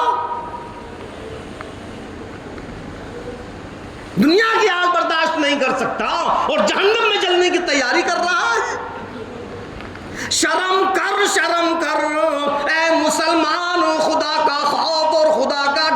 دنیا کی آگ برداشت نہیں کر سکتا اور جہنم میں جلنے کی تیاری کر رہا ہے. شرم کر, شرم کر اے مسلمان, خدا کا خوف اور خدا کا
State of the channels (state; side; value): identical; both; correlation 1.00